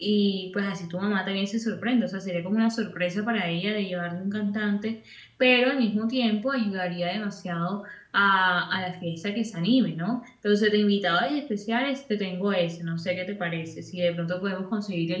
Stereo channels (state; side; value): identical; both; correlation 1.00